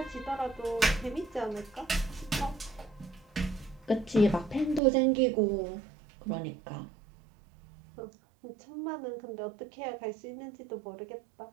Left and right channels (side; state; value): left; drops out; at 4.8 s